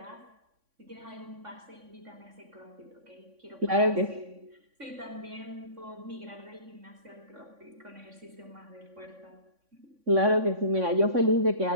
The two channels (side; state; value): left; late; 3.6 ms